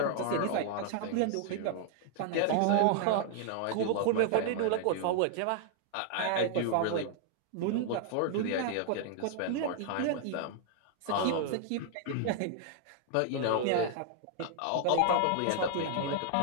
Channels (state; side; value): different; both; correlation 0.00